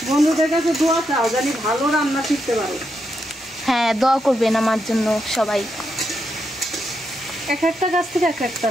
বন্ধুদের কাছে দোয়া চাও জানি ভালো রান্না শিখতে পারো। হ্যাঁ, দোয়া করবেন আমার জন্য সবাই। এক একটা গাছ থেকে এক একটা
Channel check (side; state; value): both; normal; correlation 0.82